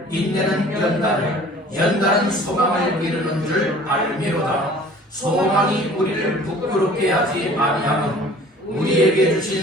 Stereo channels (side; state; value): both; normal; correlation 0.48